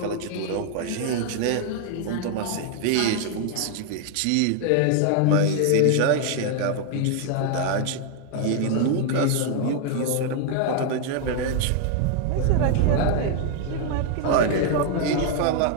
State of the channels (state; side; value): different; both; correlation 0.00